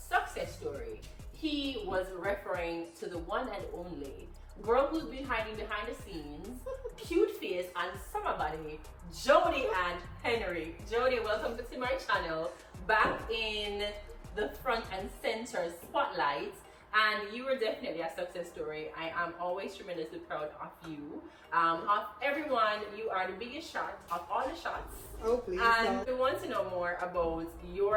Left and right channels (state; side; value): identical; both; correlation 1.00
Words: story, he was referring to the one and only girl who's been hiding behind the scenes, cute face and summer body, Jody and Henry. Jody, welcome to my channel, back in the front and center spotlight. And you were definitely a success story. I am always tremendously proud of you. Of everyone, you are the biggest shot of all the shots. Oh, please. And we want to know more about